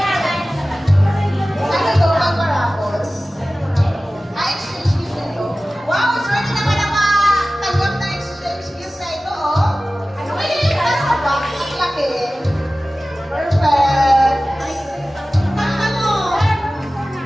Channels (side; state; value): both; normal; correlation 0.96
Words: Ano ito, mga parapos? Exchange gift na ito. Wow, swerte naman ang tanggap na exchange gift na ito, oh. Ano kayo yung nasa box? Ang laki. Perfect. Ano?